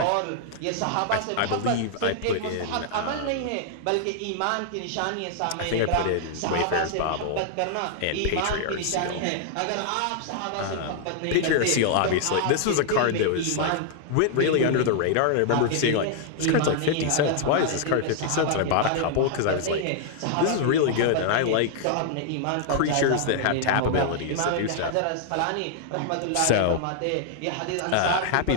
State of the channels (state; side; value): different; both; correlation -0.01